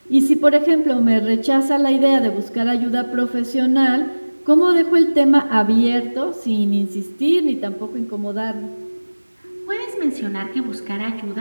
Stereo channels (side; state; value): both; inverted; correlation -1.00